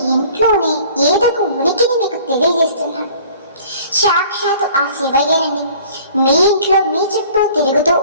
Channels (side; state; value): both; inverted; correlation -0.51